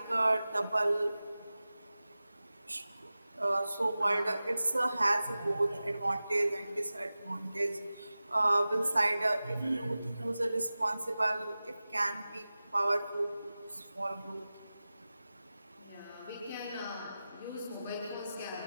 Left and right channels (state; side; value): inverted; both; correlation -0.96